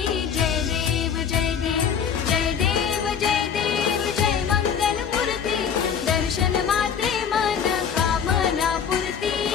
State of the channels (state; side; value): quieter; right; 7.4 dB